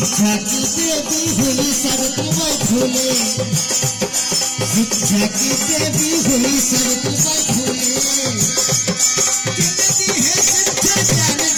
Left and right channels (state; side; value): identical; both; correlation 1.00